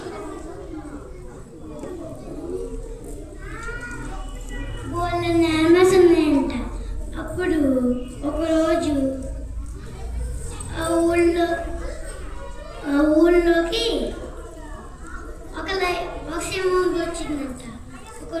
బోళ్ళ animals ఉన్నాయంట. అప్పుడు ఒకరోజు ఊళ్ళోకి ఒక సింహం వచ్చిందంట.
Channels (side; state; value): both; identical; correlation 1.00